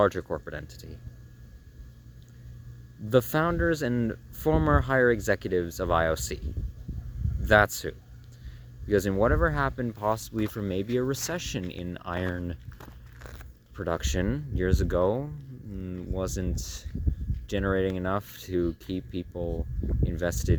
corporate entity? The founders and former higher executives of IOC. That's who. Because in whatever happened possibly from maybe a recession in iron production years ago, wasn't generating enough to keep people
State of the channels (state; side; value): identical; both; correlation 1.00